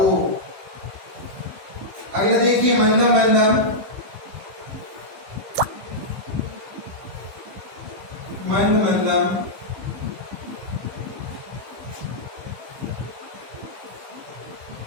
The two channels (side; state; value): left; late; 15 ms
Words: अगला देखिए मंदम मंदम, मंद मंदम,